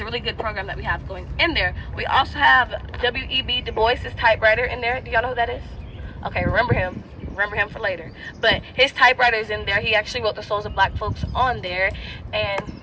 really good program that we have going in there. We also have W.E.B. Du Bois' typewriter in there. Do y'all know who that is? Okay, remember him for later. But his typewriter is in there. He actually wrote The Souls of Black Folks on there. And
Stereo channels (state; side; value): identical; both; correlation 1.00